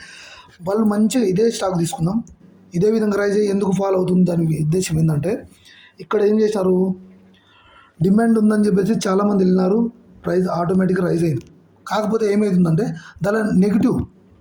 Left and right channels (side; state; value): both; identical; correlation 1.00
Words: వాళ్ళు మంచిగా ఇదే స్టాక్ తీసుకుందాం, ఇదే విధంగా రైజ్ అయ్యి ఎందుకు ఫాలో అవుతుంది, దాని ఉద్దేశం ఏంటంటే ఇక్కడ ఏం చేశారు, డిమాండ్ ఉందని చెప్పేసి చాలామంది వెళ్ళినారు, ప్రైస్ ఆటోమేటిక్గా రైజ్ అయింది. కాకపోతే ఏమవుతుందంటే దాని